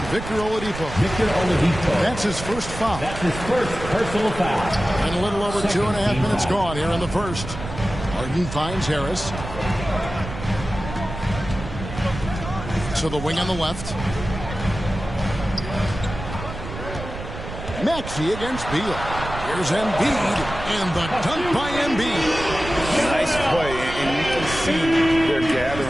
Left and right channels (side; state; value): right; noise; rumble, 9 dB below the sound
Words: Victor Oladipo. Victor Oladipo. That's his first foul. That's his first personal foul. And a little over 2.5 minutes gone here in the first. Harden finds Harris. To the wing on the left. Maxey against Beal. Here's Embiid, and the dunk by Embiid. Nice play, and you can see they're